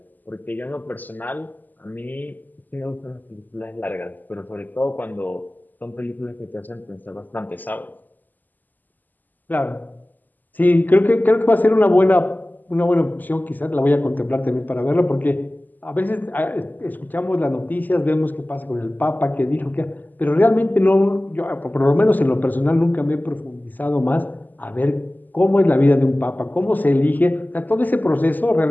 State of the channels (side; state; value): right; late; 0.085 ms